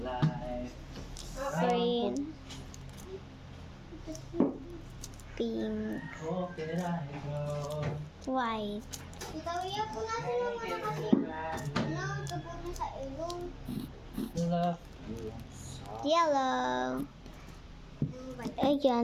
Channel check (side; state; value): both; identical; correlation 1.00